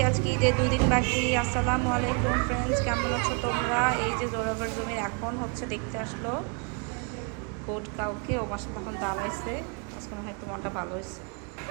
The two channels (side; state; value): left; quieter; 35.4 dB